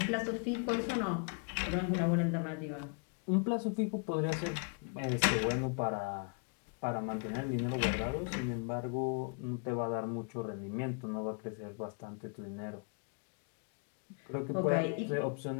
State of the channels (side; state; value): right; quieter; 39.8 dB